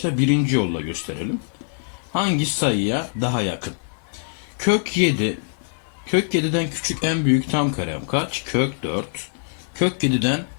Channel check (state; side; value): silent; right; 60 dB below the other